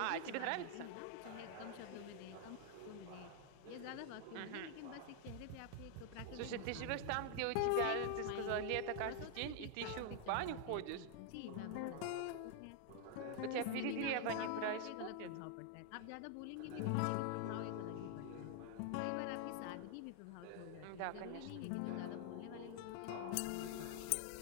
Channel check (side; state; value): both; different; correlation 0.00